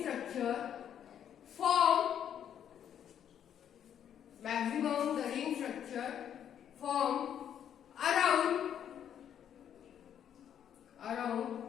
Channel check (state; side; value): quieter; right; 9.4 dB